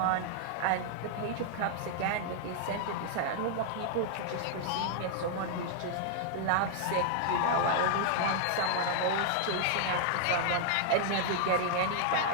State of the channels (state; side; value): different; both; correlation -0.01